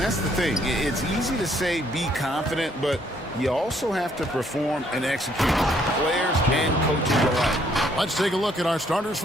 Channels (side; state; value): both; normal; correlation 0.67